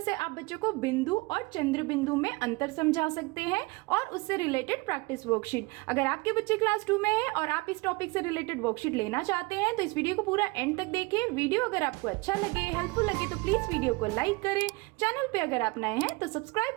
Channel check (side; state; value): left; quieter; 25.5 dB